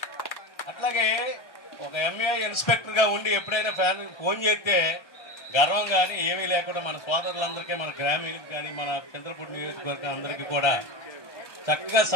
అట్లాగే ఒక ఎంఏ ఇన్స్పెక్టర్గా ఉండి ఎప్పుడైనా ఫోన్ చేస్తే గర్వం కానీ ఏమీ లేకుండా మన సోదరులందరికీ, మన గ్రామీణులకు కానీ, మన చంద్రపూడి నియోజకవర్గం అందరికీ కూడా చక్కగా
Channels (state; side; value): late; right; 1.2 ms